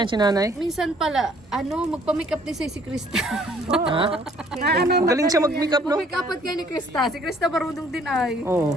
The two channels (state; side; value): normal; both; correlation 0.60